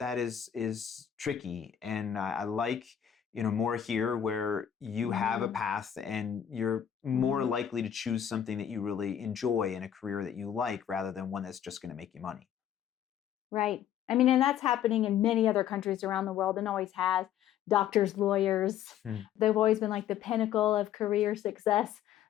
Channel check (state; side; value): quieter; right; 9.9 dB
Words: is tricky. And I like, more here, where you have a path and you're more likely to choose something that you really enjoy and a career that you like, rather than one that's just going to make you money. Right. I mean, and that's happening in many other countries around the world, and always has. Doctors, lawyers, they've always been like the pinnacle of career success.